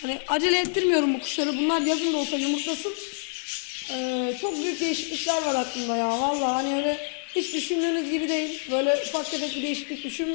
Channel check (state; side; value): silent; right; 61 dB below the other